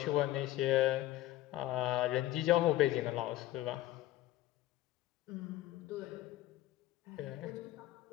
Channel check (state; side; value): quieter; right; 15.1 dB